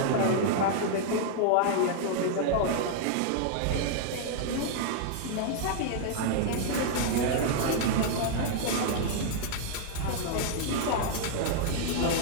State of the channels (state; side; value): different; both; correlation -0.01